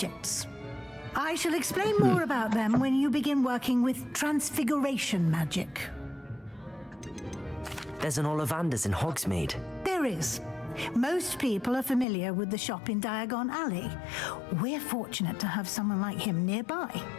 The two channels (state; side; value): drops out; right; at 12.1 s